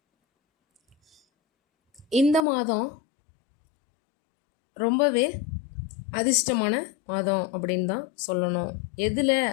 இந்த மாதம் ரொம்பவே அதிர்ஷ்டமான மாதம் அப்படின்னு தான் சொல்லணும். எதில்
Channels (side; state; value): right; drops out; at 2.4 s